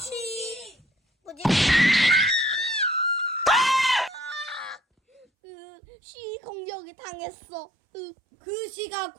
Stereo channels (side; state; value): left; drops out; at 5.2 s